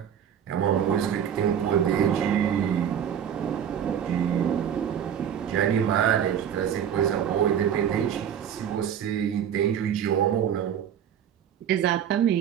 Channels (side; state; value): left; quieter; 9.0 dB